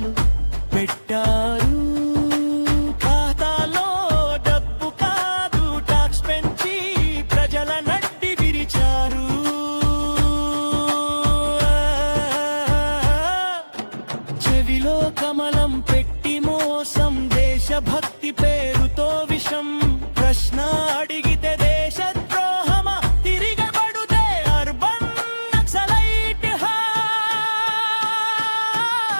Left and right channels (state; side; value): inverted; both; correlation -1.00